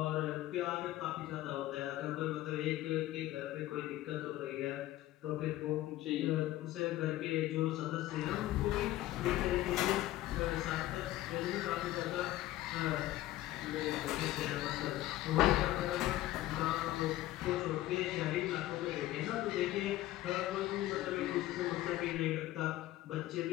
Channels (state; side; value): quieter; right; 15.4 dB